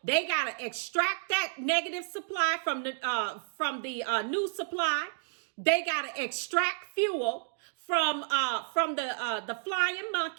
they gotta extract that negative supply from the new supply. They gotta extract fuel from the flying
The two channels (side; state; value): left; silent; digital silence